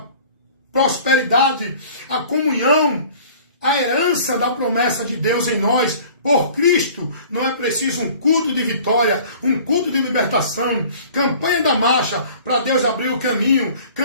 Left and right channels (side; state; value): both; inverted; correlation -0.48